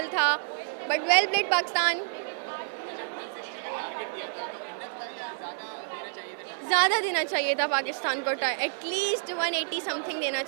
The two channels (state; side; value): silent; left; digital silence